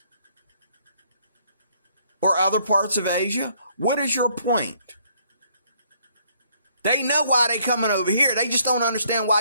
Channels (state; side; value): inverted; both; correlation -0.66